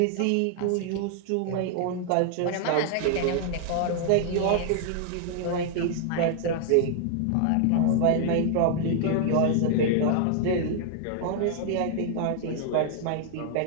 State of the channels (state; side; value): different; both; correlation 0.00